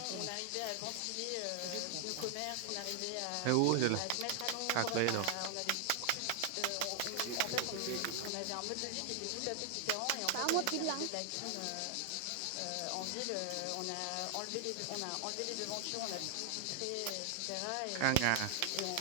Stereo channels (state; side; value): different; both; correlation 0.00